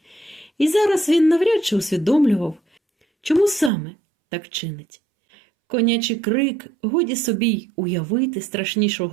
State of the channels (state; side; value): drops out; left; at 3.7 s